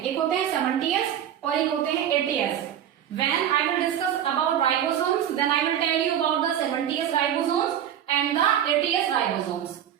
एक होते हैं 70S और एक होते हैं 80S. When I will discuss about ribosomes, then I will tell you about the 70S ribosomes and the 80S ribosomes.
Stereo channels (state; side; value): quieter; left; 10.1 dB